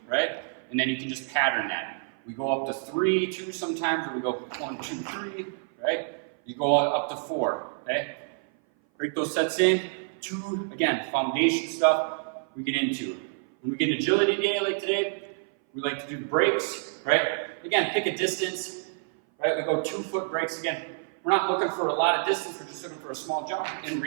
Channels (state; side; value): silent; left; 57 dB below the other